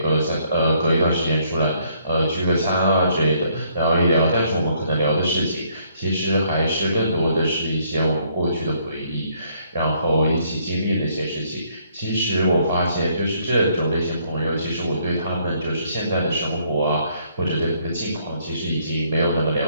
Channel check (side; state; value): both; inverted; correlation -0.68